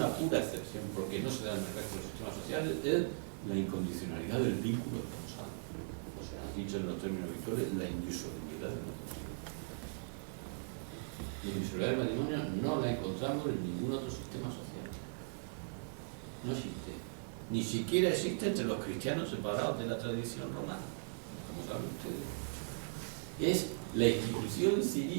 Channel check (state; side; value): silent; left; digital silence